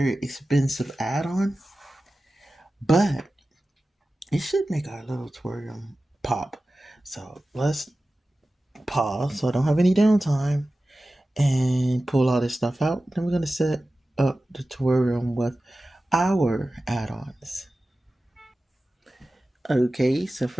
expensive add-on, but it should make our little aquarium pop. So let's pause so I don't have any downtime and pull all this stuff out. Then we're gonna set up the terrarium with our add-ons. Okay, so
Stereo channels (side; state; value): both; normal; correlation 0.95